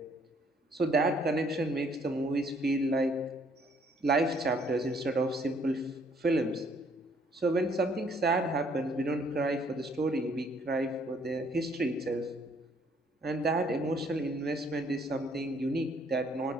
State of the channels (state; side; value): normal; both; correlation 0.64